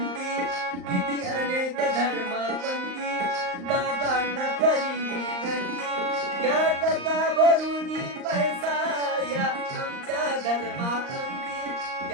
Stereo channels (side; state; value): left; late; 38 ms